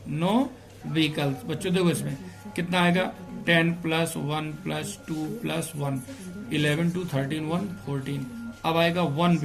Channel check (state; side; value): identical; both; correlation 1.00